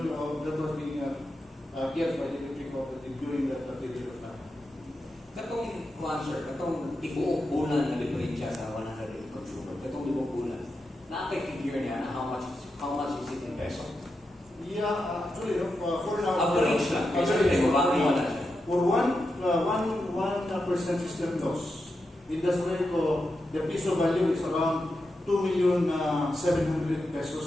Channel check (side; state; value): both; normal; correlation 0.88